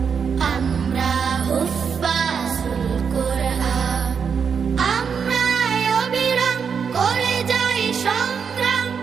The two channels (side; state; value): left; quieter; 6.5 dB